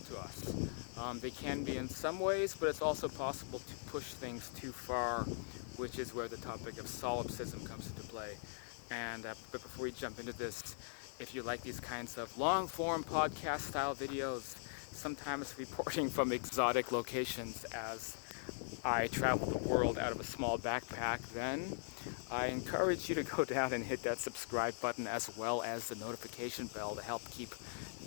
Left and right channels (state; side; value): silent; right; digital silence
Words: us. They can be in some ways, but it's also possible to push things too far, which is where the topic of solipsism comes into play. And but before we jump into this, if you like these kinds of long-form podcast-style videos, sometimes reporting from exotic locations as I travel the world out of a small backpack, then I encourage you to go down and hit that subscribe button as well as the notification bell to help keep